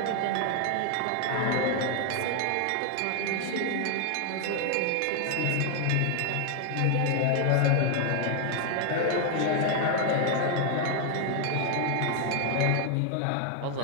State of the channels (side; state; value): both; different; correlation 0.01